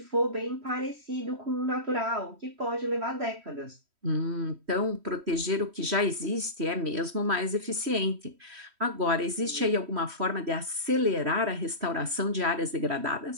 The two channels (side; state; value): left; late; 3.1 ms